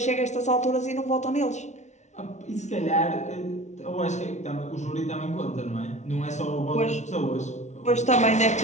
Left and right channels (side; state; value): right; late; 0.33 ms